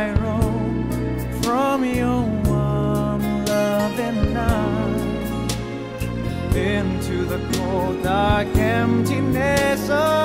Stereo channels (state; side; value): identical; both; correlation 1.00